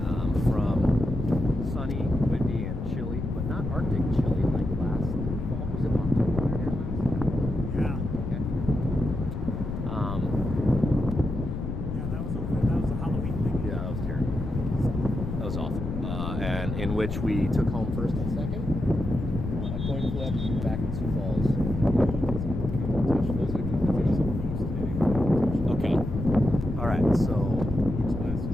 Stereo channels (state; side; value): noise; left; rumble, 4 dB below the sound